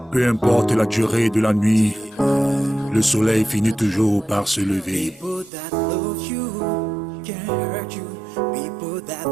Peu importe la durée de la nuit, le soleil finit toujours par se lever. People that love you can hurt you. People that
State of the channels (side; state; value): left; drops out; at 5.5 s